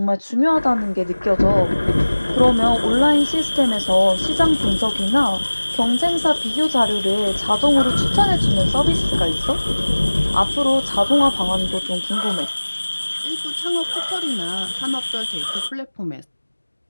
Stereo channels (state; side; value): inverted; both; correlation -1.00